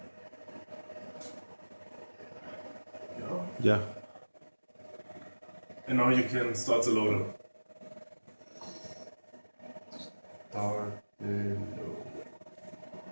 Ya. And now you can start the loader. Start the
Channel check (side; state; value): both; inverted; correlation -1.00